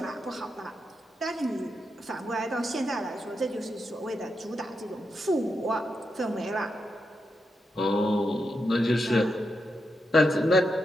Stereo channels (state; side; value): normal; both; correlation 0.85